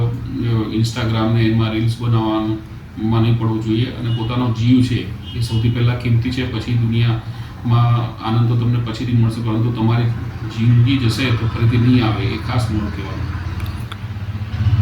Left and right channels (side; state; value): both; identical; correlation 1.00